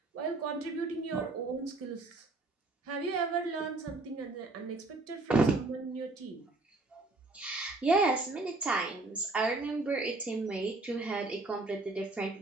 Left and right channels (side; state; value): left; quieter; 3.2 dB